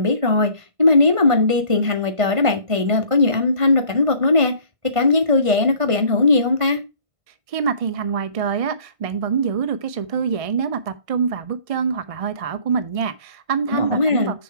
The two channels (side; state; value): left; late; 1.5 ms